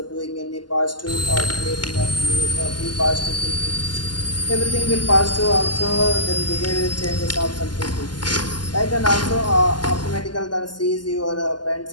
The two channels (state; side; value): late; right; 0.71 ms